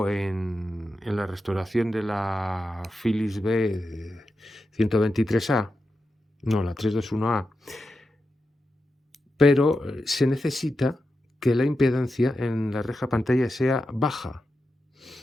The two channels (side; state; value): both; normal; correlation 0.89